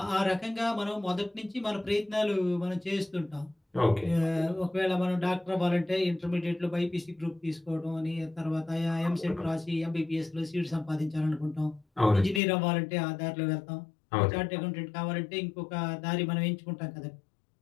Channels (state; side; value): drops out; right; at 12.4 s